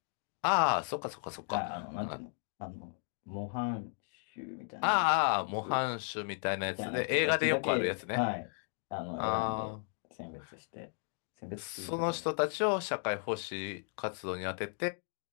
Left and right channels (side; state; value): right; silent; digital silence